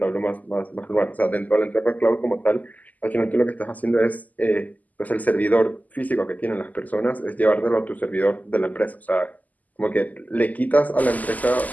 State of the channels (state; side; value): late; right; 0.079 ms